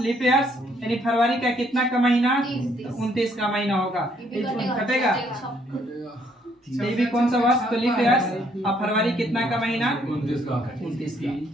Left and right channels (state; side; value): normal; both; correlation 0.68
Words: ईयर्स, यानी फरवरी का कितना का महीना 29 का महीना होगा, कटेगा ये भी कौन सा वर्ष तो लीप ईयर्स, अब फरवरी कितना का महीना 29 का।